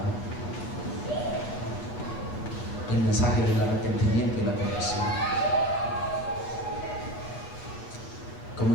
el mensaje del arrepentimiento y la conversión.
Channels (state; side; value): late; right; 7.9 ms